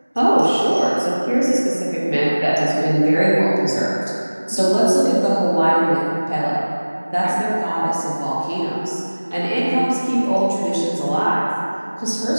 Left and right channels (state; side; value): inverted; both; correlation -1.00